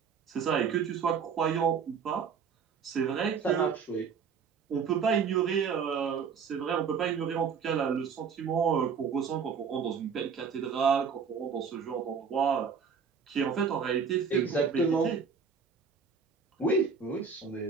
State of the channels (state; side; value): quieter; left; 6.2 dB